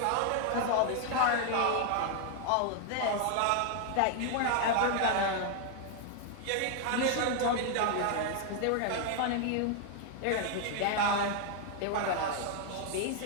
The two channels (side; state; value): both; different; correlation 0.00